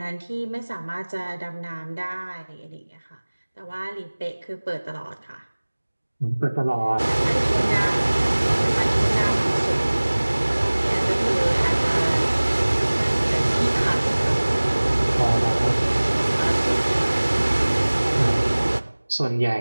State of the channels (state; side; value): inverted; both; correlation -1.00